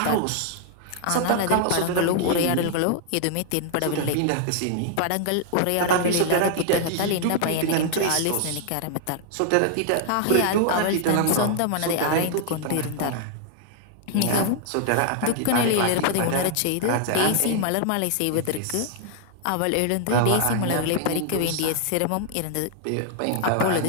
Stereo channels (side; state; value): both; different; correlation -0.01